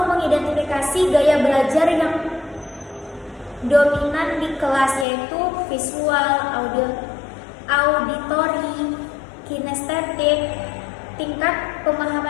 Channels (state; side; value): drops out; right; at 5.1 s